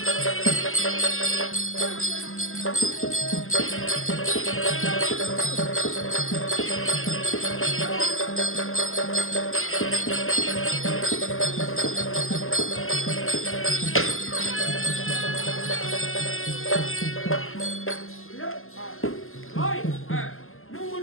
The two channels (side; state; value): right; late; 0.61 ms